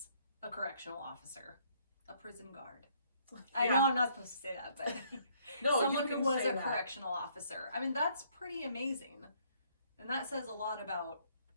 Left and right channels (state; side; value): inverted; both; correlation -0.66